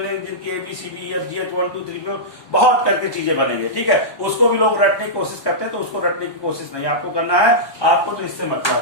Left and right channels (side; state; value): right; late; 1.2 ms